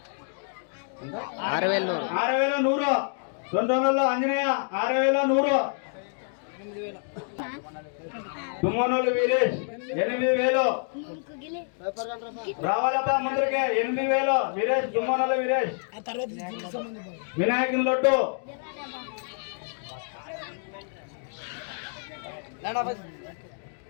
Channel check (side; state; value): right; silent; 60 dB below the other